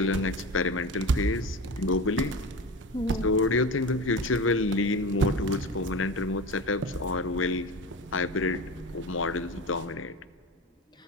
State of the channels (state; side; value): normal; both; correlation 0.27